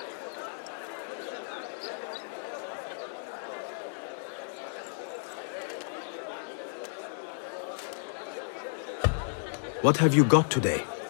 What have you got today?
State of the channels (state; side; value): silent; right; digital silence